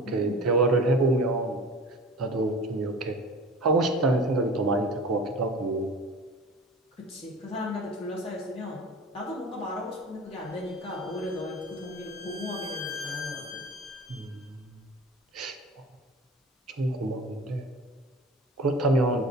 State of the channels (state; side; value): normal; both; correlation 0.38